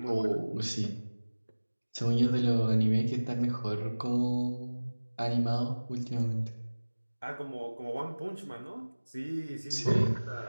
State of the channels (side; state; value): both; inverted; correlation -1.00